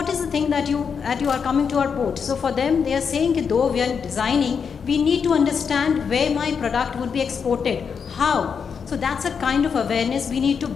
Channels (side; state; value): right; quieter; 6.4 dB